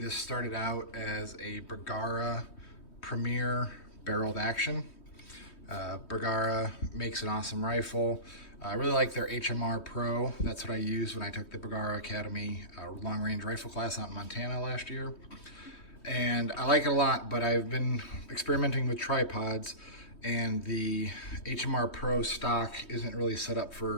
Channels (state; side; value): late; right; 3.2 ms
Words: started out as a Bergara Premier barreled action. Bergara makes an awesome rifle. I really like their HMR Pro. That's what I used when I took the Bergara Academy long range rifle class out in Montana last year. And I like it a lot, but I've been experimenting with tripods and the HMR Pro stock isn't really set up